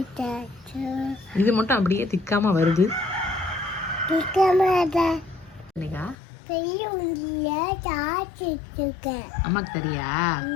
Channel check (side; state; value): right; drops out; at 6.2 s